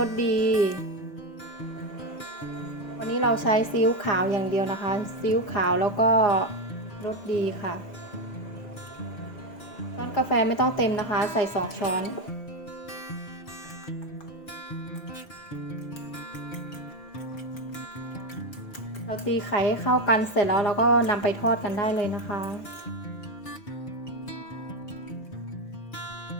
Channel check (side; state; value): right; late; 5.0 ms